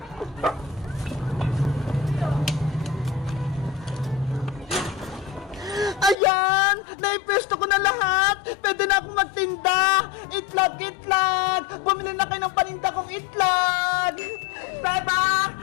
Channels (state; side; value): drops out; right; at 6.2 s